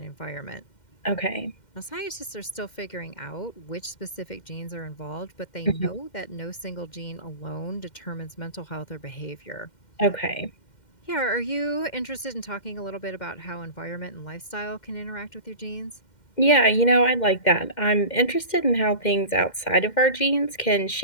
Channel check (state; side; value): late; right; 2.1 ms